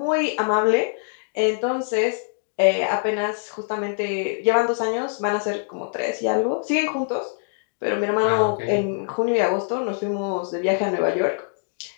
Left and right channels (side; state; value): right; silent; digital silence